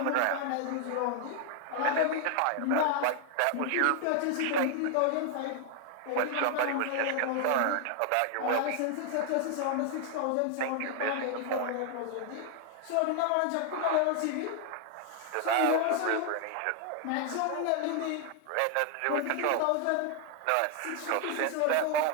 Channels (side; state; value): both; different; correlation 0.00